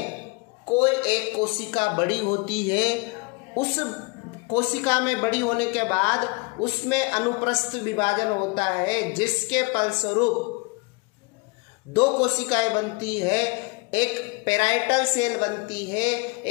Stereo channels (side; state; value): right; quieter; 28.8 dB